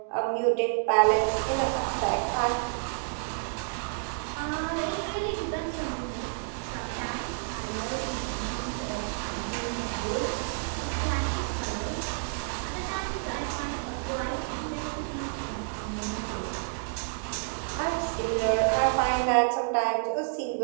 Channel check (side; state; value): left; silent; digital silence